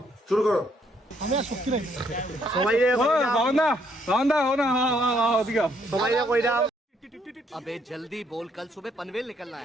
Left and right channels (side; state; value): both; normal; correlation 0.70